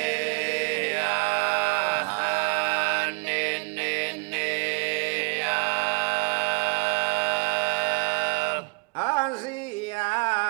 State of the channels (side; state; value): left; quieter; 32.4 dB